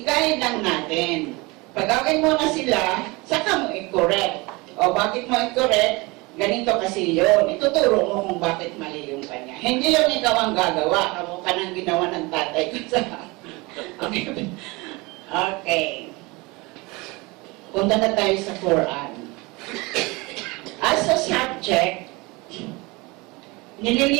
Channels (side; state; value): left; quieter; 24.7 dB